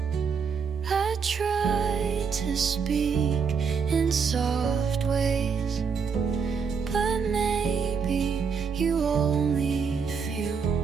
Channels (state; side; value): quieter; left; 5.9 dB